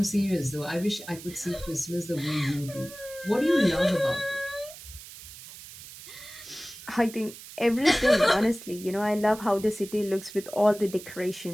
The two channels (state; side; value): noise; right; hiss, 15 dB below the sound